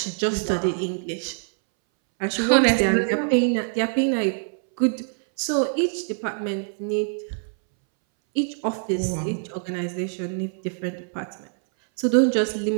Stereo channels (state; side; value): silent; left; 62 dB below the other